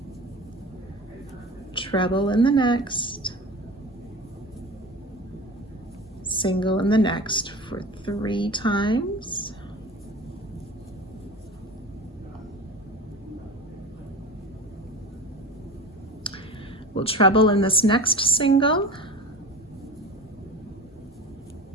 treble in the next, single in the next for 3 times. We'll treble in this next single,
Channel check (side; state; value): both; normal; correlation 0.34